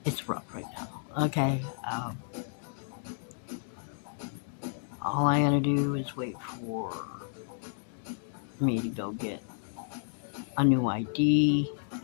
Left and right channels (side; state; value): right; silent; digital silence